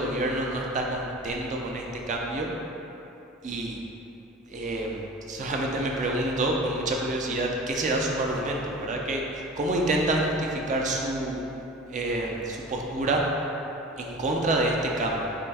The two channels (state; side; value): normal; both; correlation 0.36